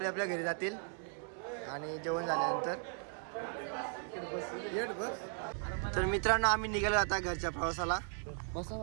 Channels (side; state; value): left; silent; 53 dB below the other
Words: घरी जातील आणि जेवण झाल्यानंतर. तर मित्रांनो आम्ही निघालो आता घरच्या प्रवासाला.